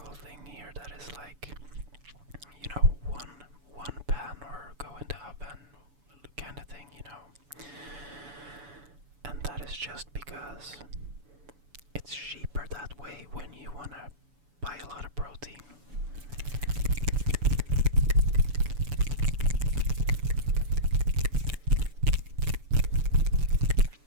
thing here that is like, you know, one pan or go in the oven kind of thing, you know. And that is just because it's cheaper that way when you want to buy a lot of protein.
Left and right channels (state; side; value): late; left; 7.0 ms